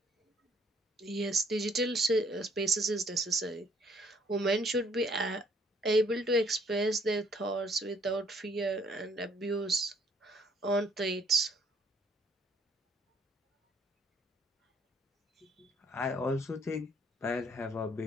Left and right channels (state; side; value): normal; both; correlation 0.64